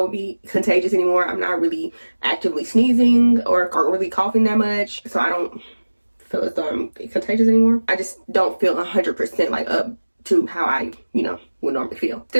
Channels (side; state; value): both; inverted; correlation -1.00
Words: be contagious anymore. I'm not really actively sneezing or really coughing that much, so I don't feel as though I'm contagious anymore. I just don't feel 100% like up to how I, would normally feel.